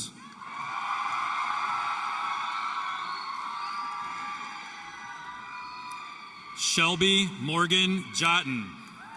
Shelby Morgan Jotten.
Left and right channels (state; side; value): identical; both; correlation 1.00